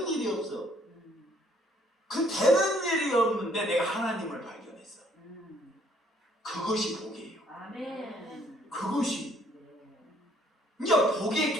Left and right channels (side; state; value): both; normal; correlation 0.64